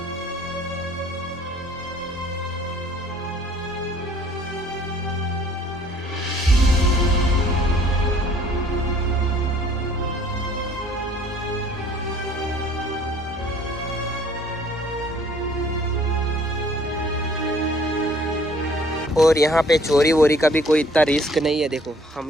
और यहाँ पे चोरी वोरी का भी कोई इतना रिस्क नहीं है। देखो हम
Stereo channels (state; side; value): normal; both; correlation 0.57